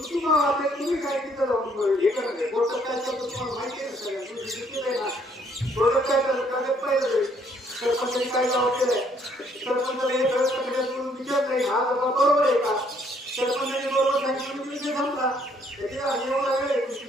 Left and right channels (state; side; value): normal; both; correlation 0.66